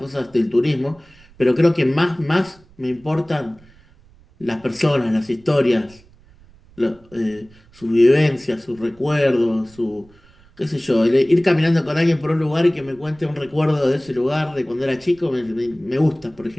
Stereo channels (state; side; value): noise; right; rumble, 27 dB below the sound